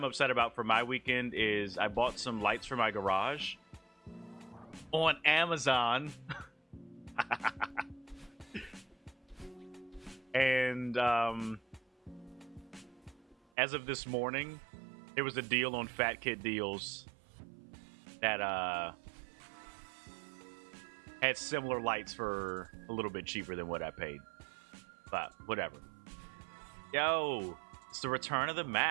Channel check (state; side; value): drops out; left; at 13.4 s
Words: upset about for my weekend is I bought some lights for my garage on Amazon. And as of this morning, there was a deal on Fat Kid Deals that had similar lights for a little bit cheaper than what I paid. But whatever. Yo, it's the return of the